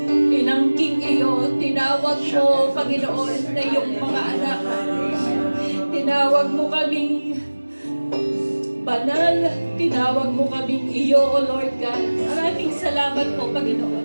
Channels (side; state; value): both; inverted; correlation -1.00